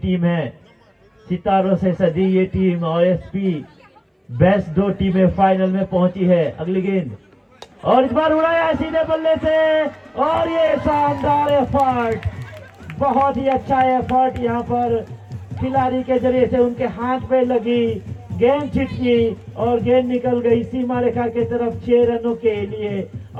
है, सितारों से सजी ये टीम और एसपी बेस्ट 2 टीमें फाइनल में पहुंची है। अगली गेंद, और इस बार उड़ाया सीधे बल्ले से, और ये शानदार एफर्ट, बहुत ही अच्छा एफर्ट यहाँ पर खिलाड़ी के जरिए से उनके हाथ पे लगी, गेंद छिटकी और गेंद निकल गई सीमा रेखा के तरफ 6 रनों के लिए।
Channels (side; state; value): both; identical; correlation 1.00